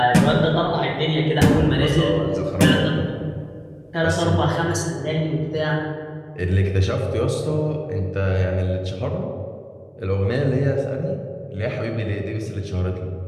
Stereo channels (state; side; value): identical; both; correlation 1.00